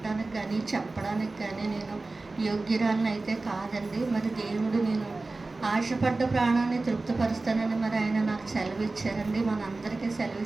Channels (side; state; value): left; quieter; 3.4 dB